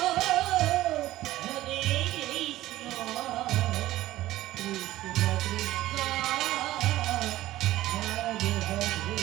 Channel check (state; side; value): quieter; left; 15.6 dB